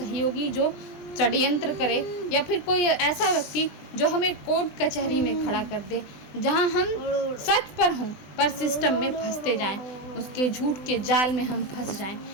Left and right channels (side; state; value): right; late; 20 ms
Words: जो षड्यंत्र करे, या फिर कोई ऐसा व्यक्ति जो हमें कोर्ट कचहरी में खड़ा कर दे, जहां हम सच पर हों पर सिस्टम में फंसते जाएं, उसके झूठ के जाल में हम फंस जाएं।